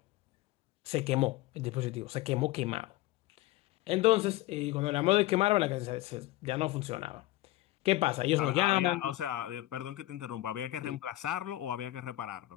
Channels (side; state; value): right; quieter; 17.1 dB